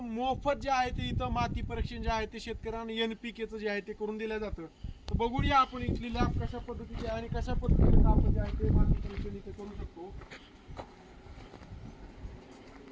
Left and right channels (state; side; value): identical; both; correlation 1.00